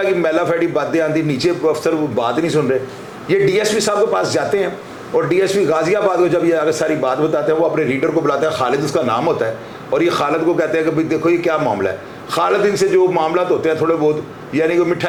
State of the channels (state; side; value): identical; both; correlation 1.00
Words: की मैला फैडी बातें आती, नीचे अफसर वो बात नहीं सुन रहे। ये DSP साहब के पास जाते हैं और डीएसपी गाजियाबाद को जब ये आगे सारी बात बताते हैं, वो अपने रीडर को बुलाते हैं, खालिद उसका नाम होता है, और ये खालिद को कहते हैं कि भाई देखो ये क्या मामला है। खालिद इनसे जो मामला होते हैं थोड़े बहुत, यानी कि